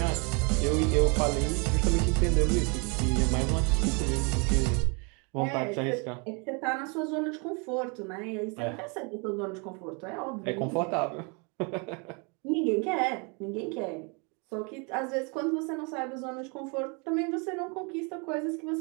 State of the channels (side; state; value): left; quieter; 33.3 dB